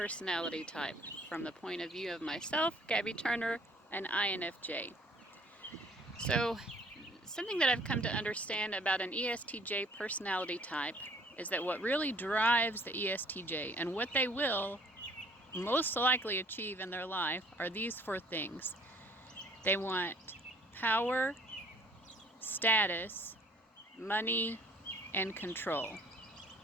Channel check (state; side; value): normal; both; correlation 0.57